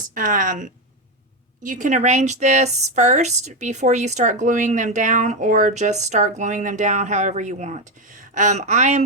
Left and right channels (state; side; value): normal; both; correlation 0.09